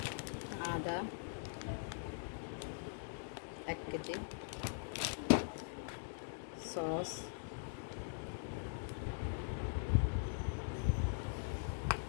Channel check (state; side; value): silent; right; digital silence